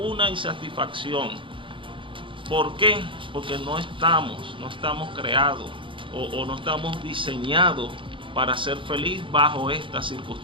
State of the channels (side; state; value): left; late; 0.25 ms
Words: insatisfacción. ¿Por qué? Porque no estamos creados o no estamos diseñados para ser feliz bajo estas